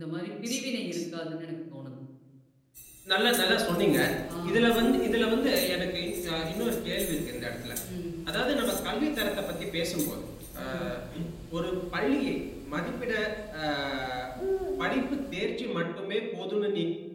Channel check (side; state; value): both; identical; correlation 1.00